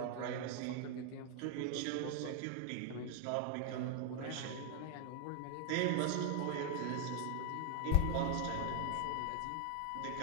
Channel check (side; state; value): both; different; correlation 0.00